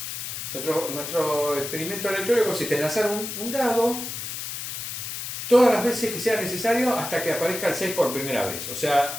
nuestro experimento aleatorio consiste en lanzar un dado todas las veces que sea necesario hasta que aparezca el 6 por primera vez. O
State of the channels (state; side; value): noise; left; hiss, 6 dB below the sound